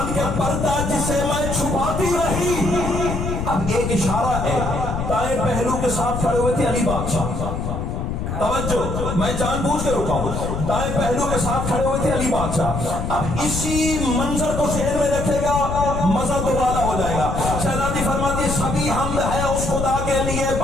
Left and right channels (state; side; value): noise; left; rumble, 3 dB below the sound